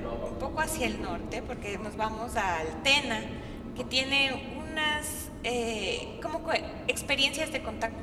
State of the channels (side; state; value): both; identical; correlation 1.00